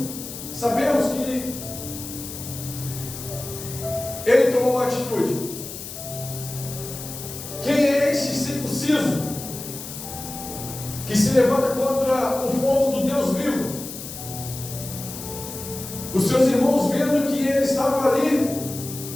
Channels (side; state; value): left; noise; hiss, 10 dB below the sound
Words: Sabemos que ele tomou uma atitude. Quem é esse circunciso que se levanta contra o povo do Deus vivo? Os seus irmãos, vendo que ele estava ali